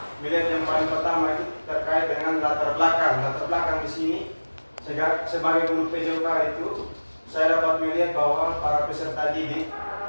melihat yang paling pertama itu terkait dengan latar belakang. Latar belakang di sini sebagai guru PJOK itu saya dapat melihat bahwa para peserta didik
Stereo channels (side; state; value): both; inverted; correlation -1.00